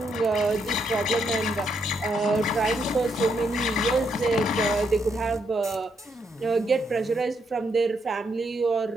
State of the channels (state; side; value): normal; both; correlation 0.77